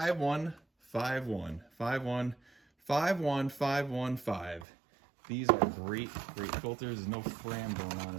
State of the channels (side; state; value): left; drops out; at 4.7 s